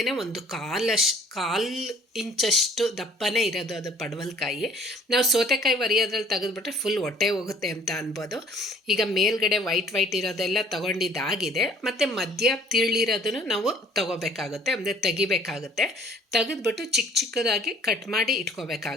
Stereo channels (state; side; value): normal; both; correlation 0.55